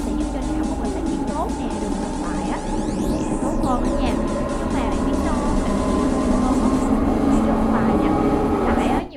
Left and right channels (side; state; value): both; identical; correlation 1.00